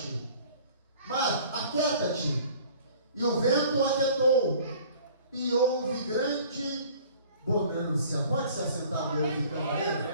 Mar, aquieta-te. E o vento aquietou, e houve grande bonança. Pode se assentar, meu filho,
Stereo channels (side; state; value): both; inverted; correlation -0.50